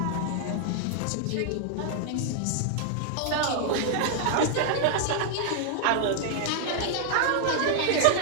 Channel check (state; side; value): different; both; correlation 0.00